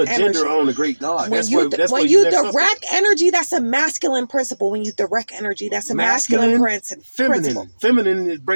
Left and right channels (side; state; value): both; inverted; correlation -1.00